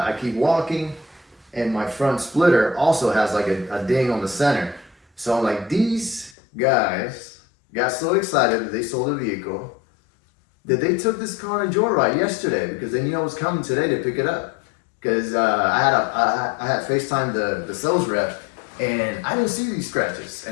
keep walking, and my front splitter also has like a ding on the center. So I'm like, these guys got so excited that they sold the vehicle that they took this car on a joyride yesterday, because they knew I was coming today to pick it up. Because I had FaceTimed the sales rep, and I didn't see these scratches,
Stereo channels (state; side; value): drops out; right; at 6.4 s